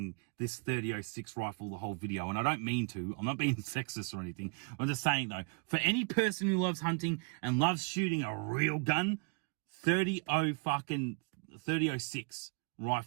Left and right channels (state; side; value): quieter; left; 35.1 dB